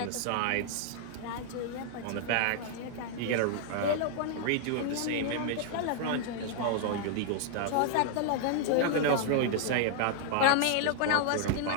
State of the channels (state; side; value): different; both; correlation -0.01